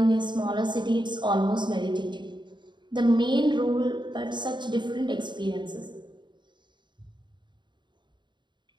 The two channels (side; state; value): left; late; 0.22 ms